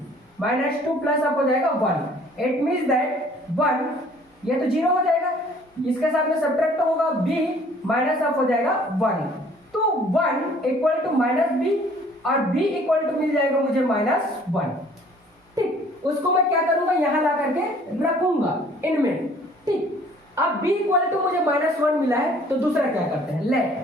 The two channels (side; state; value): both; normal; correlation 0.55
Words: प्लस अब हो जाएगा 1। इट मींस दैट 1 ये तो 0 हो जाएगा, इसके साथ में सब्ट्रैक्ट होगा b माइनस अब हो जाएगा 1 तो 1 इक्वल टू -b और b इक्वल टू मिल जाएगा मुझे -1। ठीक, उसको मैं क्या करूंगा यहां ला करके रखूंगा इनमें। ठीक, अब b इक्वल टू मुझे -1 मिला है तो दूसरा क्या करते हैं,